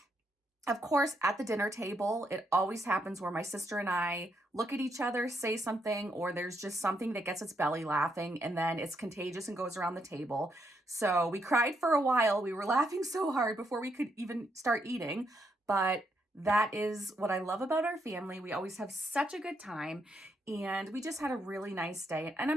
of course, at the dinner table, it always happens where my sister and I look at each other, say something, or there's just something that gets its belly laughing, and then it's contagious and goes around the table. So we cried for a while. We were laughing so hard before we could even start eating, but that is what I love about our family. We always have such a good time, and we just had a really nice day, and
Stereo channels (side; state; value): both; normal; correlation 0.78